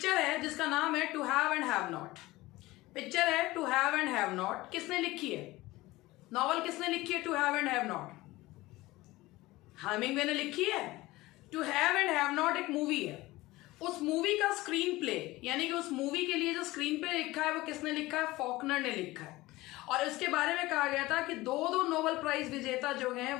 है जिसका नाम है to have and have not. Picture है to have and have not. किसने लिखी है? नॉवल किसने लिखी है to have and have not? Hemingway ने लिखी है. To have and have not एक मूवी है. उस मूवी का स्क्रीन प्ले, यानी कि उस मूवी के लिए जो स्क्रीन प्ले लिखा है वो किसने लिखा है? फॉकनर ने लिखा है. और इसके बारे में कहा गया था कि दो नोबेल प्राइज विजेता जो हैं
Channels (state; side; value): quieter; right; 19.1 dB